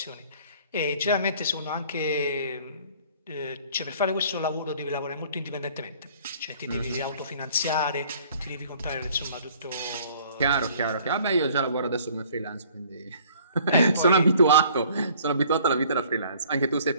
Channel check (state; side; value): inverted; both; correlation -0.55